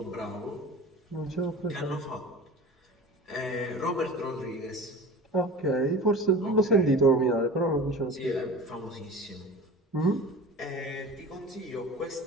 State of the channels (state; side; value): normal; both; correlation 0.36